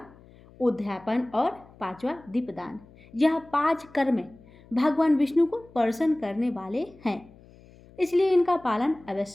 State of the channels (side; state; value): left; noise; hum, 24 dB below the sound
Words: उद्यापन और पांचवा दीपदान। यह 5 कर्म भगवान विष्णु को प्रसन्न करने वाले हैं, इसलिए इनका पालन